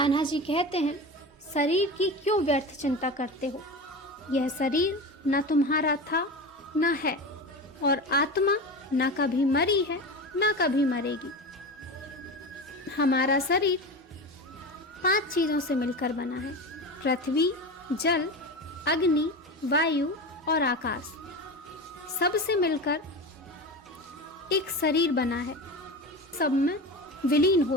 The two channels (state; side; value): normal; both; correlation 0.26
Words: जी कहते हैं, शरीर की क्यों व्यर्थ चिंता करते हो? यह शरीर न तुम्हारा था न है, और आत्मा न कभी मरी है न कभी मरेगी। हमारा शरीर 5 चीजों से मिलकर बना है, पृथ्वी, जल, अग्नि, वायु और आकाश। सबसे मिलकर एक शरीर बना है, सब में विलीन